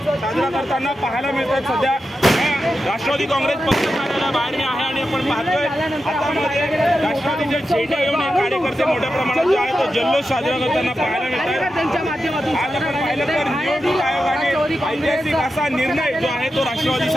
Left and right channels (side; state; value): both; normal; correlation 0.90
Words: साजरा करताना पाहायला मिळतात। सध्या राष्ट्रवादी काँग्रेस पक्ष कार्यालयाबाहेर मी आहे आणि आपण पाहतोय हातामध्ये राष्ट्रवादीचे झेंडे घेऊन कार्यकर्ते मोठ्या प्रमाणात जो आहे तो जल्लोष साजरा करताना पाहायला मिळतात। आज आपण पाहिलं तर निवडणूक आयोगाने ऐतिहासिक असा निर्णय जो आहे तो